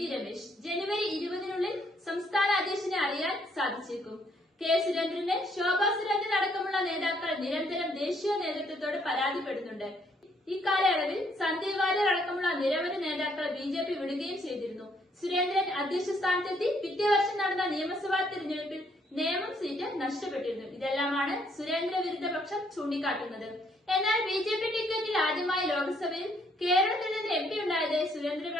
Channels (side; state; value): both; normal; correlation 0.68